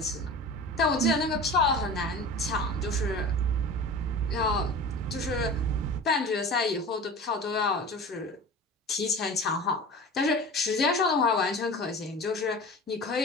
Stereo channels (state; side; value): normal; both; correlation 0.36